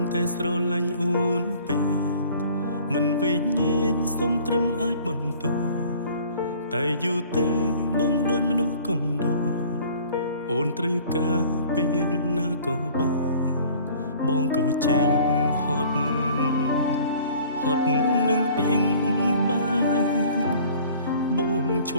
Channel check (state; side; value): inverted; both; correlation -0.51